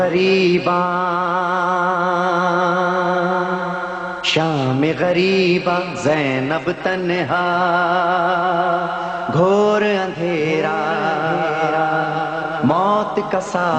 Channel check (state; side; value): identical; both; correlation 1.00